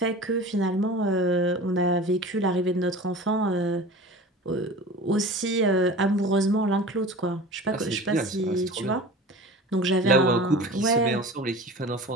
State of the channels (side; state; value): both; normal; correlation 0.37